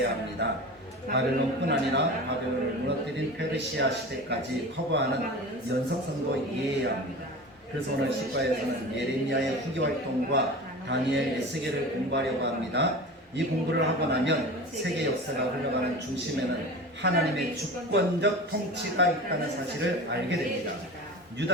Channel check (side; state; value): both; normal; correlation 0.33